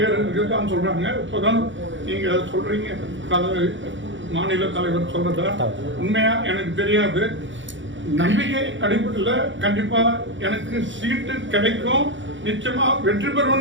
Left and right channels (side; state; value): left; late; 0.55 ms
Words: இருக்குதான் சொல்றாங்க. இப்பதான் நீங்க சொல்றீங்க மாநில தலைவர் சொல்றதா உண்மையா எனக்கு தெரியாது. நம்பிக்கை அடிப்படையில் கண்டிப்பா எனக்கு சீட்டு கிடைக்கும், நிச்சயமா வெற்றி